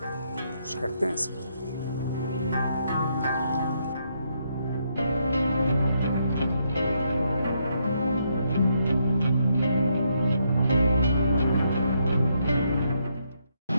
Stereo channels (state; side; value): inverted; both; correlation -0.77